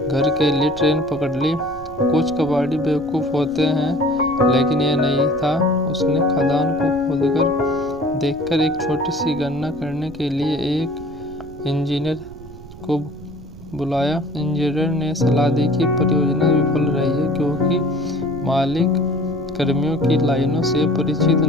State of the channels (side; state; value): right; noise; rumble, 17 dB below the sound